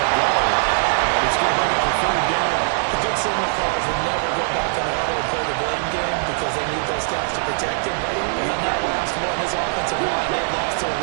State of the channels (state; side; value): silent; left; digital silence